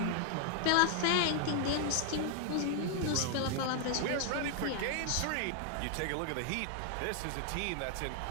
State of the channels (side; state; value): both; different; correlation 0.00